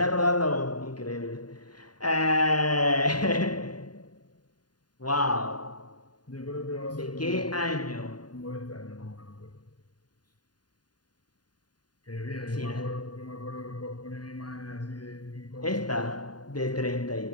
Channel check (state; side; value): late; right; 0.70 ms